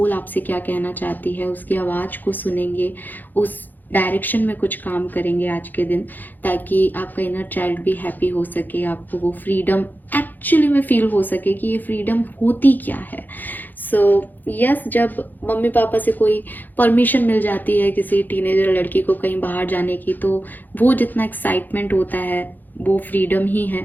आपसे क्या कहना चाहती है, उसकी आवाज़ को सुनेंगे, उस डायरेक्शन में कुछ काम करेंगे आज के दिन, ताकि आपका इनर चाइल्ड भी हैप्पी हो सके, आपको वो फ्रीडम एक्चुअली में फील हो सके कि ये फ्रीडम होती क्या है। सो यस, जब मम्मी पापा से कोई परमिशन मिल जाती है किसी टीनेजर लड़की को कहीं बाहर जाने की, तो वो जितना एक्साइटमेंट होता है वो फ्रीडम ही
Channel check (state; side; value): late; right; 0.086 ms